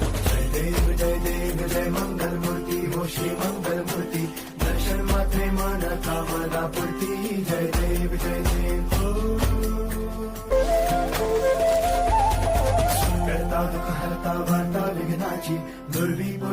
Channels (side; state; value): both; identical; correlation 1.00